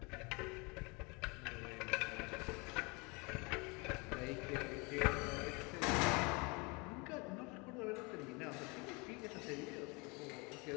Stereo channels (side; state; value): right; quieter; 28.7 dB